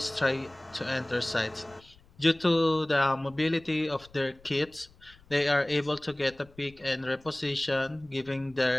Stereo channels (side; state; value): left; noise; rumble, 27 dB below the sound